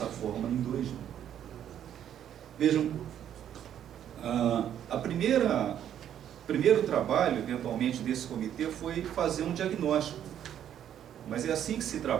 forma em 2000. Vejam, primeiro trabalho, eventualmente, desse comitê foi fazer um diagnóstico. Mas é assim que se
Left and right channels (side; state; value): left; quieter; 10.1 dB